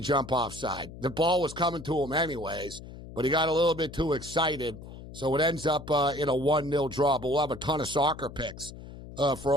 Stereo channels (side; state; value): left; noise; hum, 14 dB below the sound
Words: offside. The ball was coming to him anyways, but he got a little bit too excited. So it ends up in a 1-0 draw. But we'll have a ton of soccer picks for